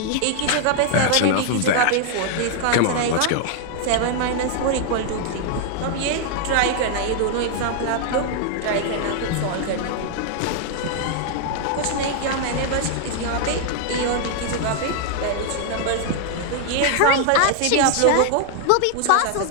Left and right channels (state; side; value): different; both; correlation 0.00